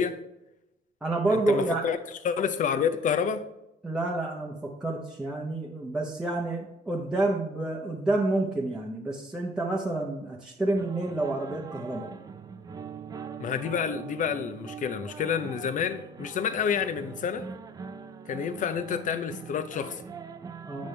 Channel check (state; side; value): normal; both; correlation 0.54